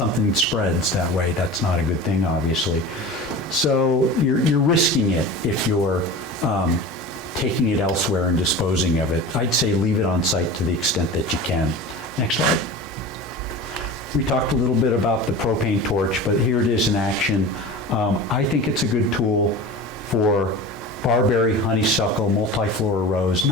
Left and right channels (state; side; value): normal; both; correlation 0.33